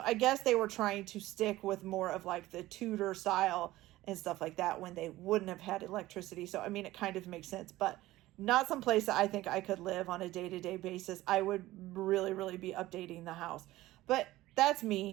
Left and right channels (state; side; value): quieter; left; 16.9 dB